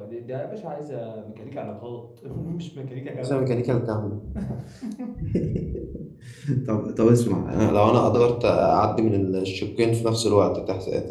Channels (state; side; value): identical; both; correlation 1.00